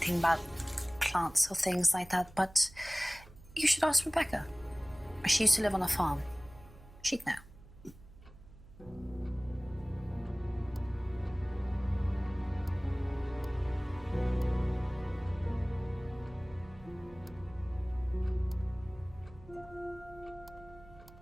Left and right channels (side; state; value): right; noise; hum, 20 dB below the sound